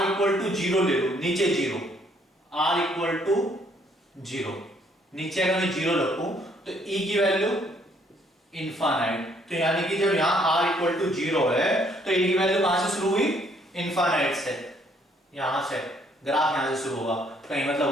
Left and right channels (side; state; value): both; normal; correlation 0.66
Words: इक्वल टू 0 ले लूं, नीचे 0, r इक्वल टू 0, नीचे अगर मैं 0 रखूं तो e की वैल्यू इनफाइनाइट, तो यानी कि जब यहां r इक्वल टू 0 है तो e की वैल्यू कहां से शुरू हुई, इनफाइनाइट से, यहां से ग्राफ यहां से शुरू होगा कहीं